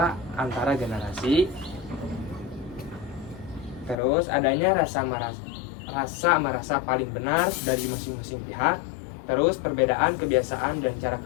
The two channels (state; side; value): drops out; right; at 4.0 s